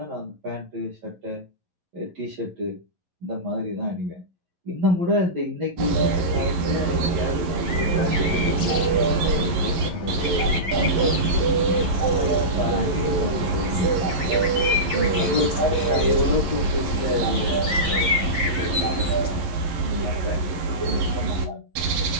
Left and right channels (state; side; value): late; left; 11 ms